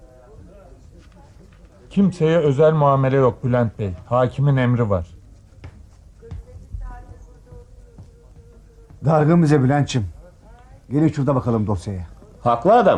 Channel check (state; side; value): identical; both; correlation 1.00